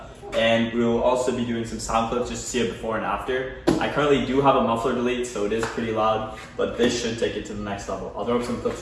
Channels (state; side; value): identical; both; correlation 1.00